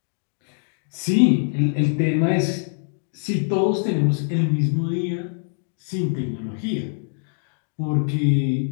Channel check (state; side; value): silent; right; digital silence